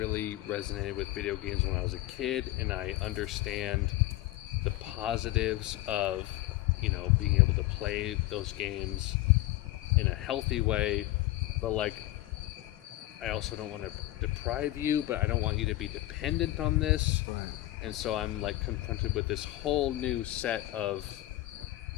resonated with video games when I was a kid, and I understand the positives of, you know, being able to play those games in a healthy way, but like I also don't want to deprive you, but I don't want you to be dependent on this. Right. And so I'm like confronted with this whole new set of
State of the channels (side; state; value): right; quieter; 16.8 dB